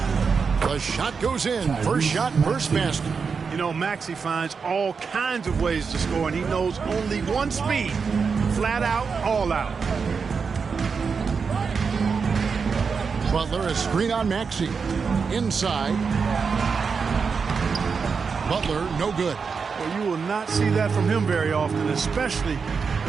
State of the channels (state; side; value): quieter; left; 5.5 dB